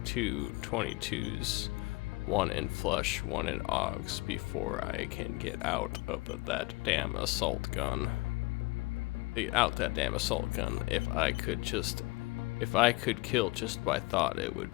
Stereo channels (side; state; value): right; quieter; 23.6 dB